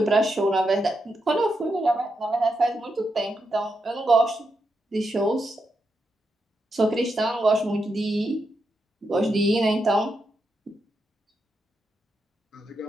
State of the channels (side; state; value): both; normal; correlation 0.84